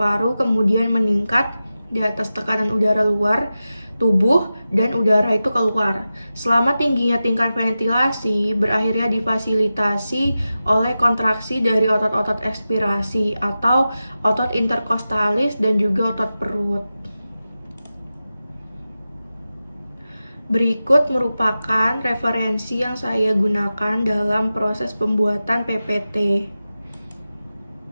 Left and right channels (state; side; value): inverted; both; correlation -0.93